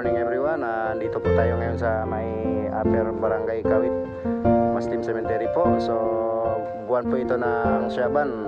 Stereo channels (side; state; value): both; identical; correlation 1.00